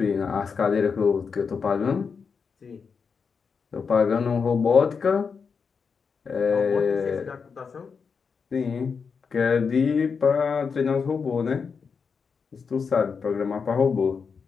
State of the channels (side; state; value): right; quieter; 5.7 dB